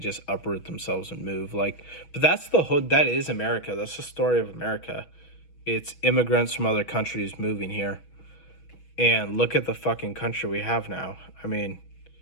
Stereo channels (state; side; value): late; right; 6.2 ms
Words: uproot themselves and move. Like, but that's the whole, that is America. That's the story of America. It's immigrants from other countries moving here. And look at the fucking country we have now. I mean,